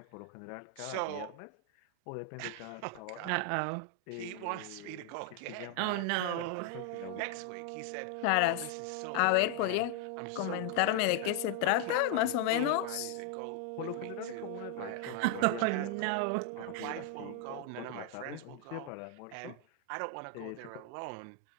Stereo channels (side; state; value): both; different; correlation 0.00